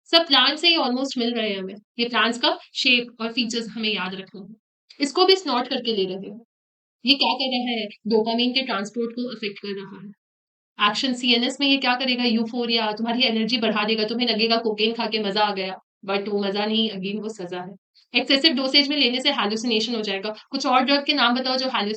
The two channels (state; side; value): identical; both; correlation 1.00